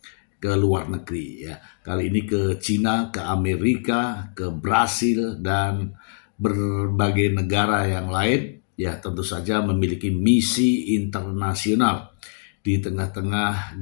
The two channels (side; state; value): right; silent; digital silence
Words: ke luar negeri ya. Kali ini ke Cina, ke Amerika, ke Brasil dan berbagai negara yang lain ya, tentu saja memiliki misi internasional di tengah-tengah